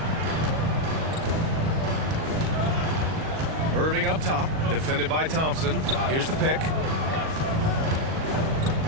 Irving up top, defended by Thompson. Here's the pick.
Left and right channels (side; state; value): left; late; 37 ms